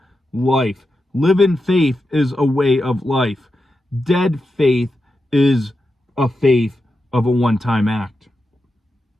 life. Living faith is a way of life. Dead faith is a faith of a one-time act.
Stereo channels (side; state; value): both; normal; correlation 0.89